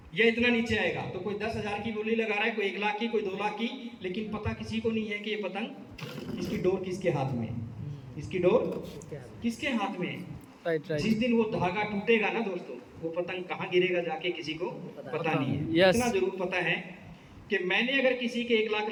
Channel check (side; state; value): both; identical; correlation 1.00